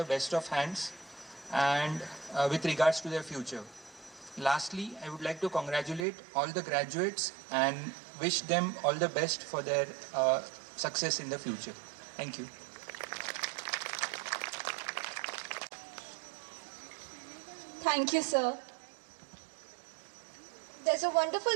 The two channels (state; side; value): drops out; left; at 6.1 s